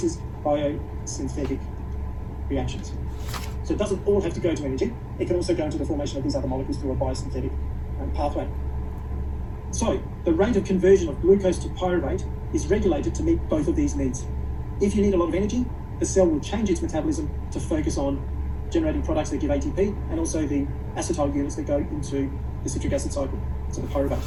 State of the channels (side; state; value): both; identical; correlation 1.00